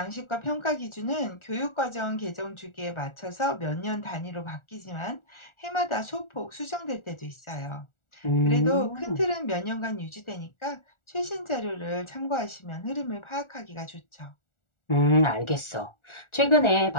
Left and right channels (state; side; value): late; right; 1.4 ms